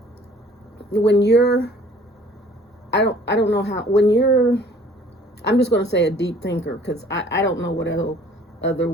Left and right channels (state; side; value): normal; both; correlation 0.54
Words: when you're, I don't know how when you're. I'm just going to say a deep thinker because I don't know what other